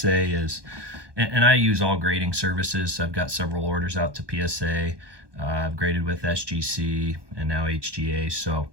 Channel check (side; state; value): left; late; 1.2 ms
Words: is, and I use all grading services. I've got several orders out to PSA. I've graded with SGC and now HGA. So,